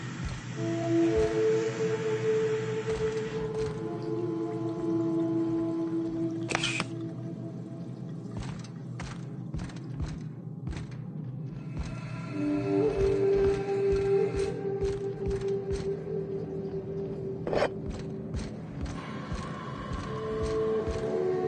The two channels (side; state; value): both; identical; correlation 1.00